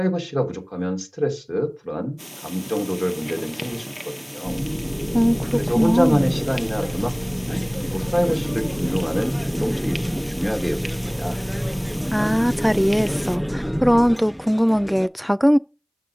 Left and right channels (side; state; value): both; identical; correlation 1.00